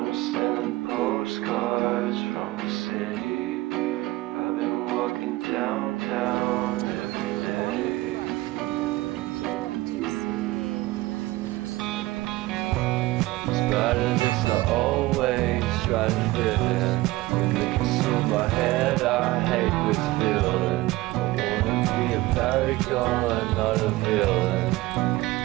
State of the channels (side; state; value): left; quieter; 19.2 dB